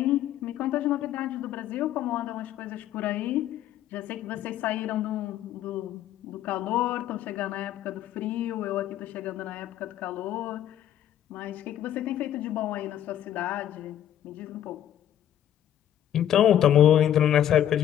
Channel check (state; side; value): quieter; right; 11.1 dB